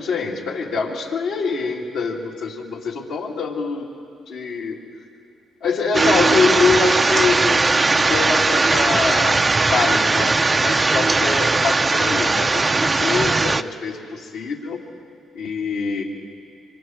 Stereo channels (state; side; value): normal; both; correlation 0.87